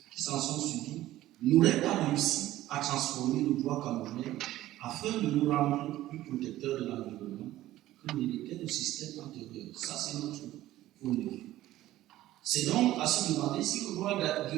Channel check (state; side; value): quieter; left; 15.0 dB